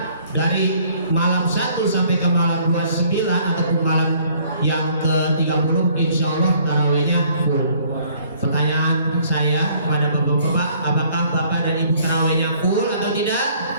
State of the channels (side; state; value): both; inverted; correlation -0.60